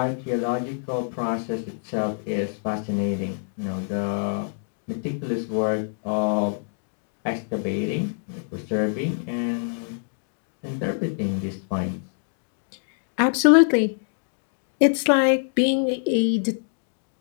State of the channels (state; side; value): silent; right; digital silence